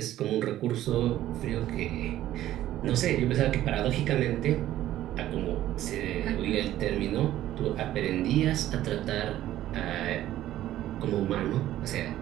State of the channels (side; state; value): left; quieter; 13.5 dB